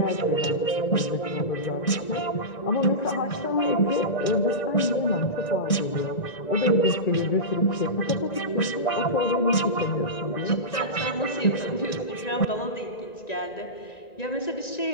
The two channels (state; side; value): late; right; 1.9 ms